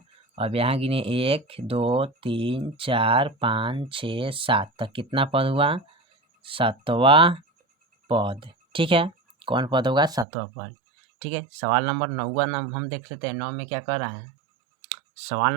अब यहाँ गिने 1 2 3 4 5 6 7 तक कितना पद हुआ 7वां पद, ठीक है। कौन पद होगा 7वां पद, ठीक है। सवाल नंबर 9 हम देख लेते हैं, 9 में क्या कर रहा है। सवाल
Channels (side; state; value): left; drops out; at 10.2 s